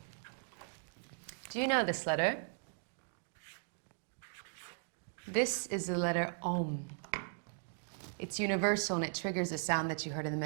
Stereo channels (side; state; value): left; silent; 52 dB below the other